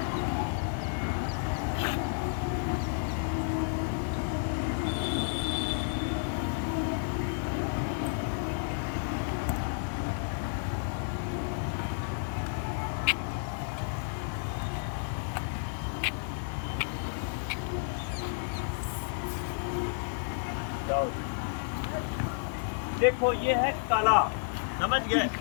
देखो ये है कला, समझ गए।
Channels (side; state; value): right; silent; digital silence